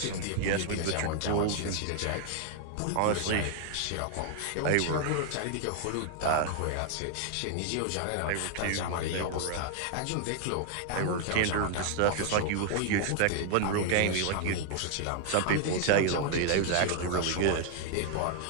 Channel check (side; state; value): both; different; correlation 0.00